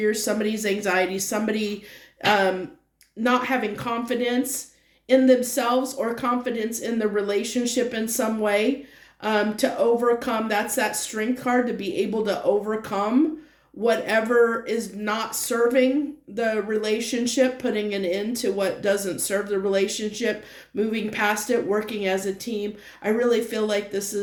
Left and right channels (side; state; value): both; identical; correlation 1.00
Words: somebody's anxiety, somebody not having confidence in themselves or confidence in the relationship in some way, to overcome. That's that strength card, to be able to overcome whatever is not serving the relationship, putting an end to what doesn't serve the relationship, moving past it, working as a team. I really feel like this